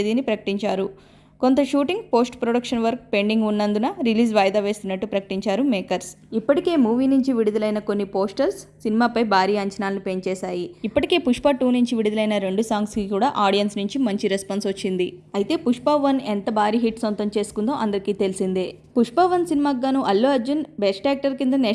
ప్రకటించారు. కొంత shooting, post production work pending ఉన్నందున రిలీజ్ వాయిదా వేస్తున్నట్టు ప్రకటించారు మేకర్స్. ఇప్పటికే మూవీ నుంచి విడుదలైన కొన్ని పోస్టర్స్ సినిమాపై భారీ అంచనాలను పెంచేశాయి. ఇప్పటికే పుష్ప 2 నుంచి విడుదలైన 2 సాంగ్స్కి కూడా ఆడియన్స్ నుంచి మంచి రెస్పాన్స్ వచ్చింది. అయితే పుష్ప 1 ఎంత భారీ హిట్ సొంతం చేసుకుందో అందరికీ తెలిసిందే. పుష్ప 1 సినిమాకు గాను అల్లు అర్జున్ బెస్ట్ యాక్టర్ కింద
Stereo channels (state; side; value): identical; both; correlation 1.00